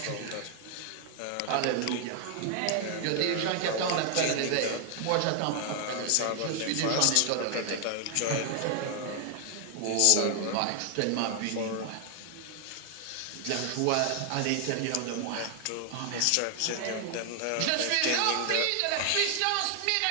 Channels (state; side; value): different; both; correlation 0.00